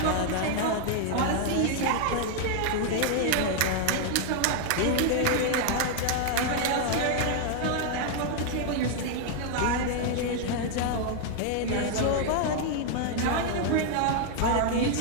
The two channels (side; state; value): both; different; correlation 0.00